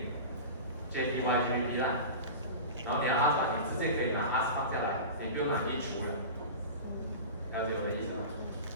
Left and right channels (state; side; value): inverted; both; correlation -0.31